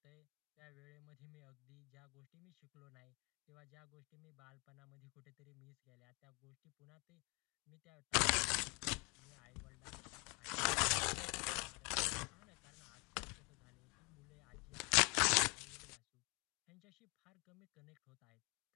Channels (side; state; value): right; quieter; 29.7 dB